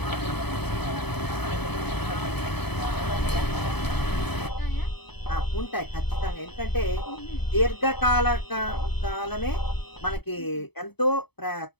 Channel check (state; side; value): late; right; 0.98 ms